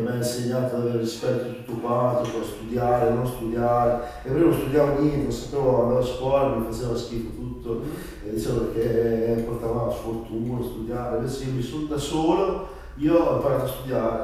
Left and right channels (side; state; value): both; identical; correlation 1.00